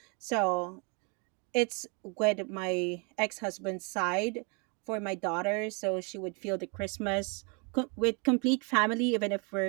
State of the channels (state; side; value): quieter; left; 34.6 dB